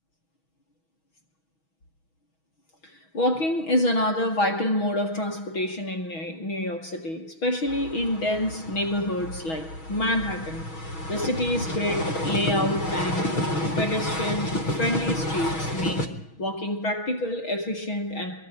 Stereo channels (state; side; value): late; right; 6.2 ms